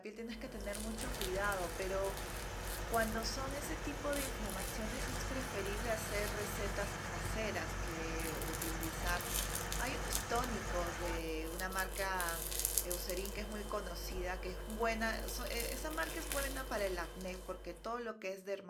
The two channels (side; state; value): both; identical; correlation 1.00